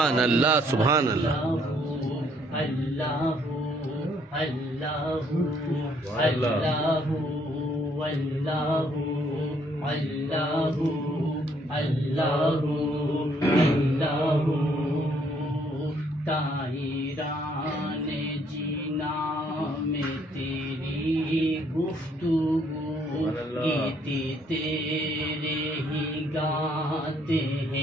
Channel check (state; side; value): normal; both; correlation 0.67